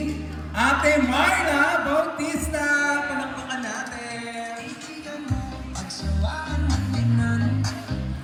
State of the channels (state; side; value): identical; both; correlation 1.00